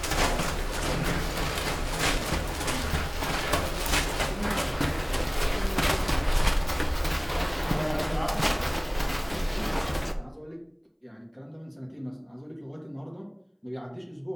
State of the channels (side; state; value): both; identical; correlation 1.00